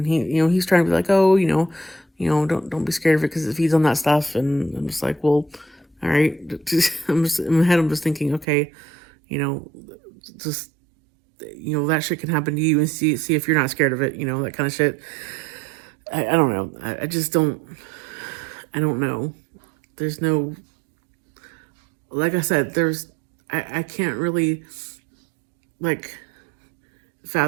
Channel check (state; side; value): drops out; left; at 8.5 s